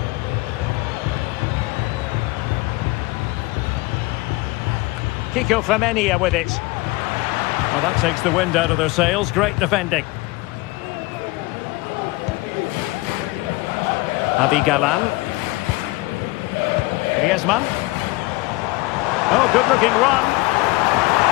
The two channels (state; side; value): quieter; right; 21.9 dB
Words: Kiko Femenia with it. Well, that takes the wind out of their sails. Great defending. Javi Galán. Griezmann. Oh, good-looking run.